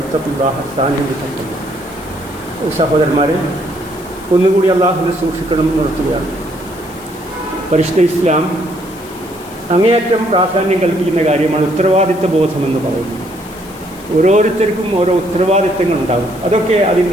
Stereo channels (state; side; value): noise; left; hiss, 21 dB below the sound